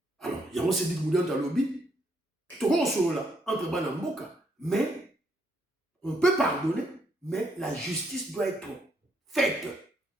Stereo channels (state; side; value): normal; both; correlation 0.73